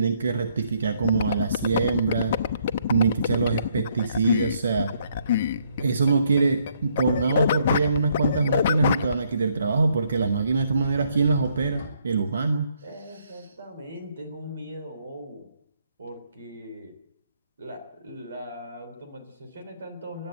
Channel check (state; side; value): inverted; both; correlation -0.70